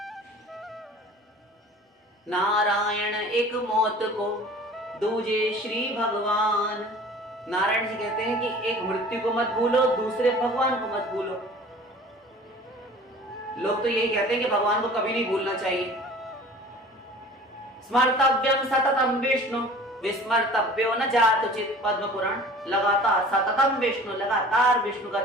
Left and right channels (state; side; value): normal; both; correlation 0.45